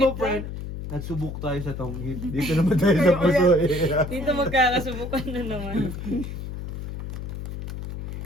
naipit friend, nagsubok tayo sa tonghid. Dito naman tayo sa puso eh. Dito magkakasubukan na naman.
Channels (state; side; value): noise; left; hum, 7 dB below the sound